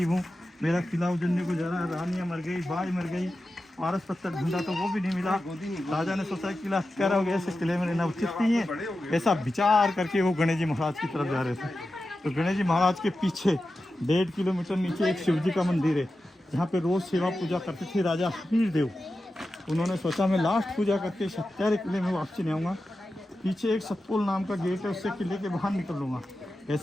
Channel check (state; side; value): normal; both; correlation 0.92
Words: हूँ, मेरा किला उजड़ने को जा रहा है, रानियाँ मर गई, बाज मर गई, पारस पत्थर ढूंढा तो वो भी नहीं मिला। राजा ने सोचा किला हत्यारा हो गया, ऐसे किले में रहना उचित नहीं है। ऐसा विचार करके वो गणेश जी महाराज की तरफ जा रहे थे। तो गणेश जी महाराज के पीछे 1.5 किलोमीटर नीचे एक शिव जी का मंदिर है, जहाँ पे रोज़ सेवा पूजा करते थे राजा हमीर देव। उन्होंने सोचा मैं लास्ट पूजा करके इस हत्यारे किले में वापसी नहीं आऊँगा, पीछे एक सतपुल नाम का गेट है, उससे किले के बाहर निकल लूँगा।